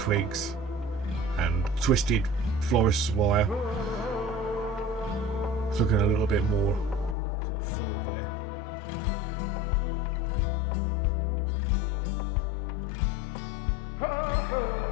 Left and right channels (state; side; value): drops out; right; at 7.2 s